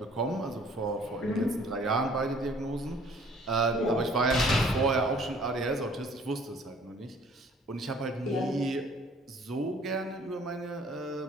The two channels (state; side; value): normal; both; correlation 0.56